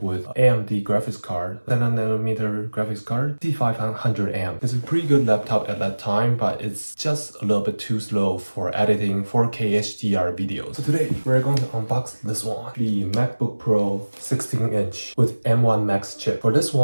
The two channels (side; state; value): both; inverted; correlation -1.00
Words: with AMD graphics card, 7nm graphics card, C500M. It's a pretty good laptop at that time, but it's just a little bit too slow for editing 4K HDR videos. So today we're going to unbox this one, the MacBook Pro 16-inch with M1 Max chip. For this